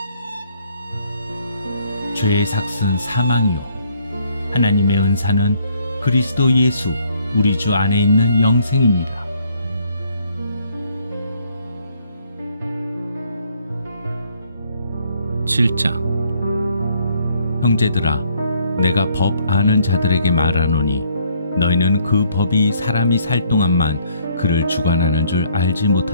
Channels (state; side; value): inverted; both; correlation -0.66